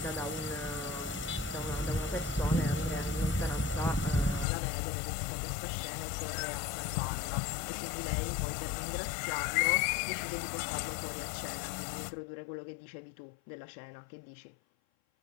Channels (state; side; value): drops out; right; at 4.5 s